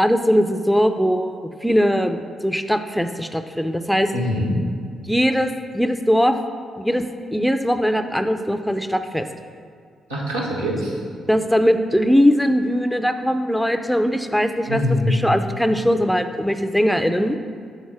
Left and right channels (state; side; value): normal; both; correlation 0.94